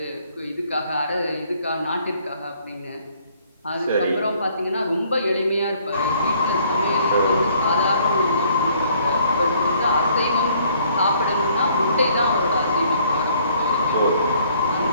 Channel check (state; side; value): inverted; both; correlation -0.62